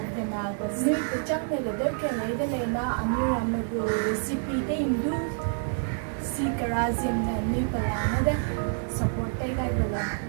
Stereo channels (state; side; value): silent; left; digital silence